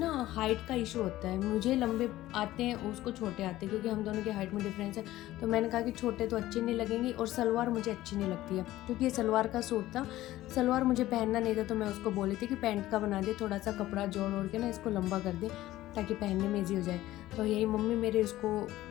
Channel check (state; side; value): quieter; right; 15.6 dB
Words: हाइट का इशू होता है, मुझे लंबे आते हैं उसको छोटे आते हैं, क्योंकि हम दोनों के हाइट में डिफरेंस है। तो मैंने कहा कि छोटे तो अच्छे नहीं लगेंगे और सलवार मुझे अच्छी नहीं लगती है, क्योंकि ये सलवार का सूट था, सलवार मुझे पहनना नहीं था। तो मैं उसको बोली थी कि पैंट का बना दे, थोड़ा सा कपड़ा जोड़ ओढ़ के ना इसको लंबा कर दे ताकि पहनने में ईजी हो जाए। तो यही मम्मी मेरे उसको